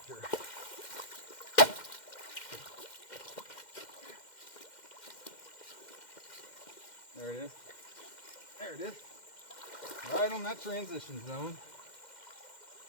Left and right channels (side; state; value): right; late; 2.1 ms